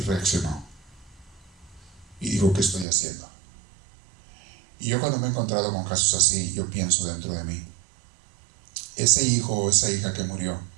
reaccionó. Y dijo, ¿qué estoy haciendo? Y yo cuando me he encontrado con casos así, yo pienso dentro de mí, ese hijo o esa hija que murió,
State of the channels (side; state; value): left; drops out; at 2.9 s